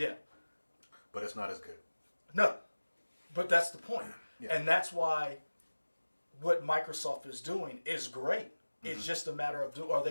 But it's not as good. No. But that's the point. Yeah. And that's why what Microsoft is doing is great. It's just a matter of are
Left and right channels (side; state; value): both; inverted; correlation -1.00